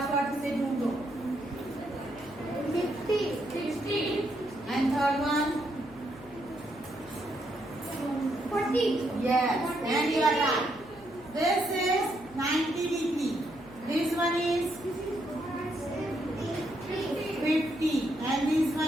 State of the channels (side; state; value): left; noise; hum, 21 dB below the sound